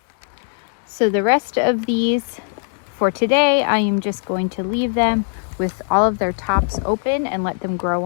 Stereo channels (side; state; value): right; silent; digital silence